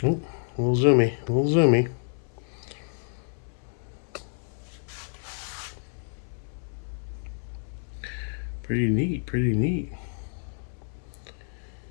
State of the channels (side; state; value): right; silent; 59 dB below the other